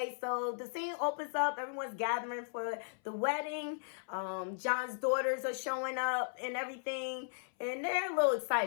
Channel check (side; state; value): right; silent; 54 dB below the other